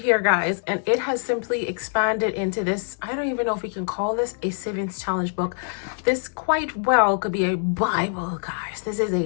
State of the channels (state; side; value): silent; right; digital silence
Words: guys, and it has simply expanded into this. I don't even know if we can call this a savings challenge book. This quite well could be a Bible, guys. This is